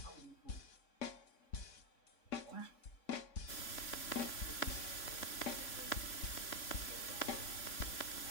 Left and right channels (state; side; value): late; right; 3.6 ms